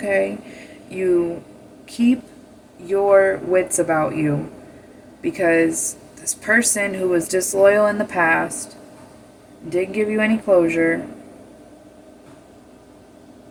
you keep your wits about you. Because this person who was disloyal in the past, didn't give you any closure,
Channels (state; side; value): identical; both; correlation 1.00